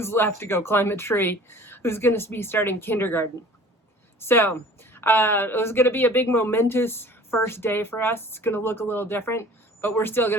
left to go climb a tree, who's going to be starting kindergarten. So it was going to be a big momentous first day for us. It's going to look a little different, but we're still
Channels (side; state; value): both; normal; correlation 0.46